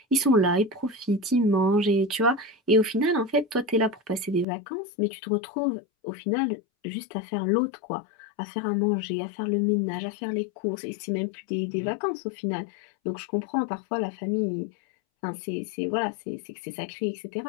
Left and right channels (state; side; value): drops out; right; at 4.5 s